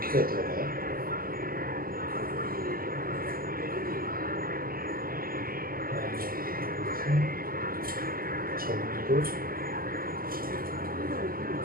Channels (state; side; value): late; left; 0.42 ms